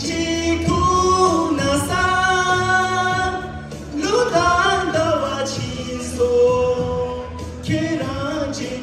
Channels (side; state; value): both; identical; correlation 1.00